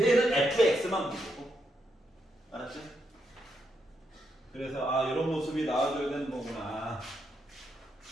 fx만 보고, 알았지? 그래서 아, 이런 모습이 나와줘야 되는 거구나.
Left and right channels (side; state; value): both; normal; correlation 0.80